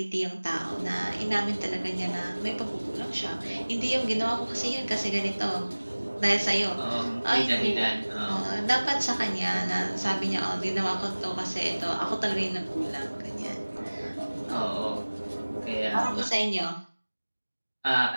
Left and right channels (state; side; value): inverted; both; correlation -1.00